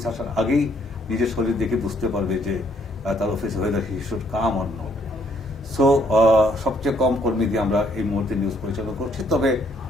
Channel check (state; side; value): normal; both; correlation 0.67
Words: আসার আগেই নিজের শরীর দেখে বুঝতে পারবে যে তার অফিসে হয়ে যায় he should come or not. So সবচেয়ে কম কর্মী দিয়ে আমরা এই মুহূর্তে নিউজ পরিচালনা করছি। তবে